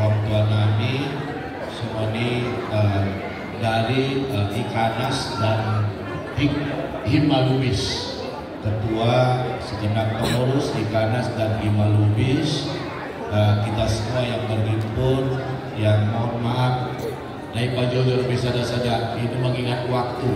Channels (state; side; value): identical; both; correlation 1.00